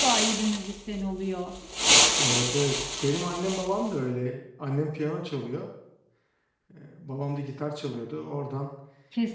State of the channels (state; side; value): identical; both; correlation 1.00